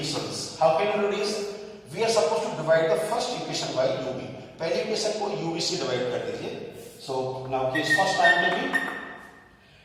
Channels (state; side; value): identical; both; correlation 1.00